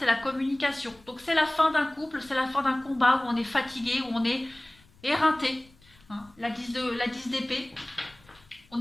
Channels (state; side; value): noise; left; rumble, 28 dB below the sound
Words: la communication. Donc c'est la fin d'un couple, c'est la fin d'un combat où on est fatigué, où on est éreinté. Hein, la 10 d'épée. On